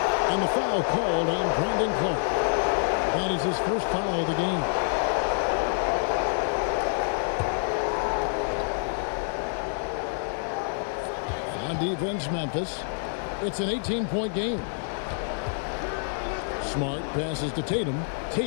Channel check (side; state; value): right; silent; digital silence